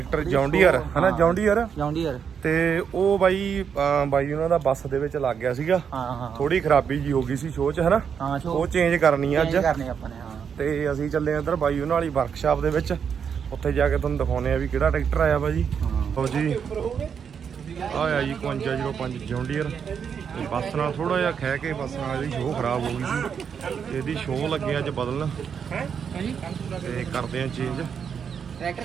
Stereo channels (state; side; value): quieter; left; 7.1 dB